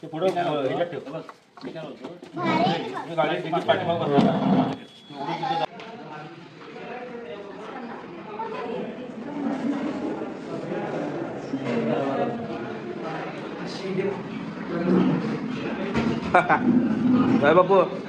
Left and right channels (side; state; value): both; identical; correlation 1.00